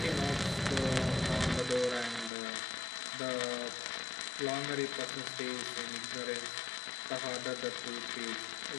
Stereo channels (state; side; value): drops out; right; at 2.3 s